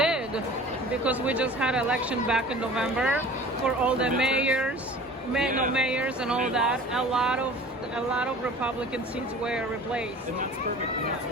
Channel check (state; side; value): normal; both; correlation 0.43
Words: because we just had election back in November for all the mayors and all that. A lot of Republican seats were replaced. And that's perfect. And that's